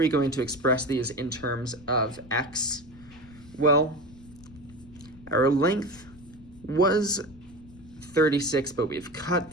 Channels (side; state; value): left; noise; rumble, 22 dB below the sound